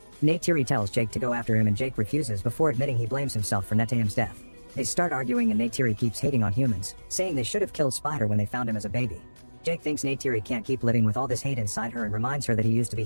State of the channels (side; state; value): both; inverted; correlation -1.00